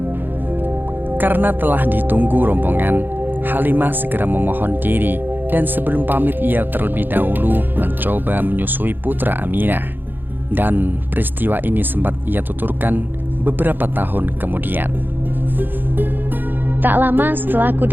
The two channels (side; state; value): left; late; 0.092 ms